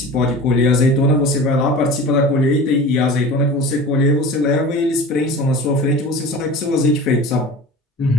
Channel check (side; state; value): both; normal; correlation 0.36